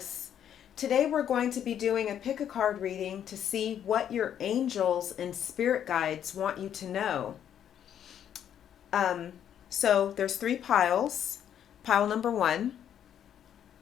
Today we're going to be doing a pick a card reading to see what your angels and spirit guides want you to know. So there's three piles. Pile number 1,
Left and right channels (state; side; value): quieter; right; 9.6 dB